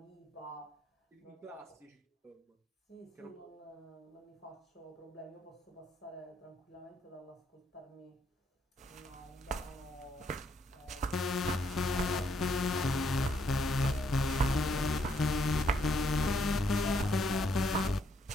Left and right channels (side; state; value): both; normal; correlation 0.73